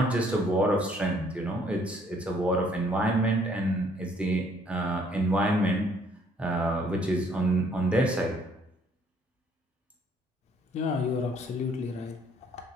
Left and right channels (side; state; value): both; normal; correlation 0.63